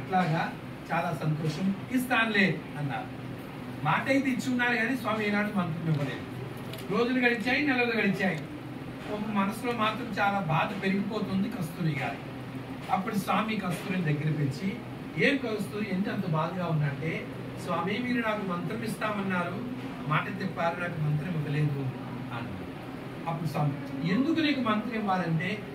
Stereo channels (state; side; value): identical; both; correlation 1.00